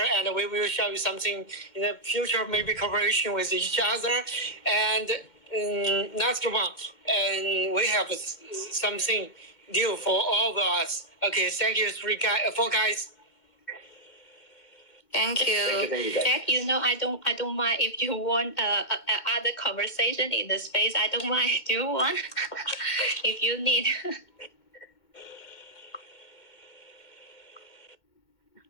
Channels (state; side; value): late; right; 2.2 ms